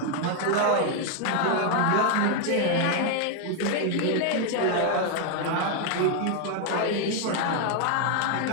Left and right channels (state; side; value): different; both; correlation 0.00